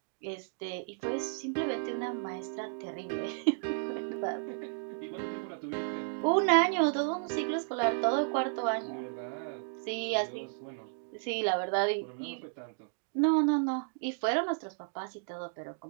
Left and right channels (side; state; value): left; silent; digital silence